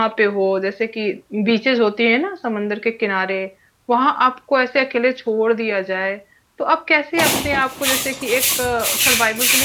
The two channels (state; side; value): identical; both; correlation 1.00